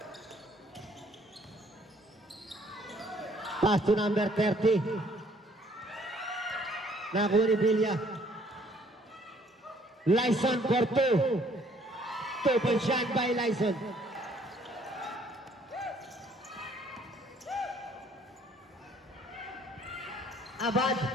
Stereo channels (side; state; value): both; normal; correlation 0.61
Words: Pass to number 30. Nakuha ni Villa. Lyson for 2. 2 points shot by Lyson. Abad,